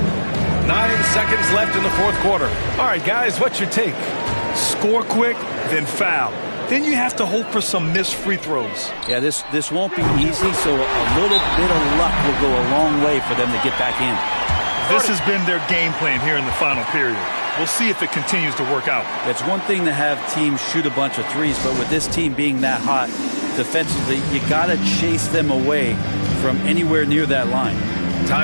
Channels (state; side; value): inverted; both; correlation -1.00